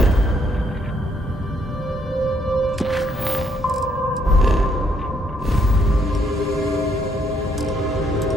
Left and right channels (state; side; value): normal; both; correlation 0.71